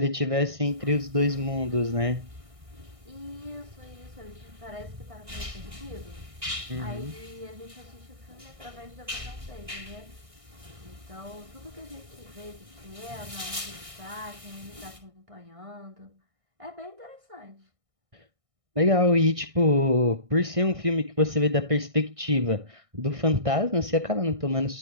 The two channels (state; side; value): late; left; 1.6 ms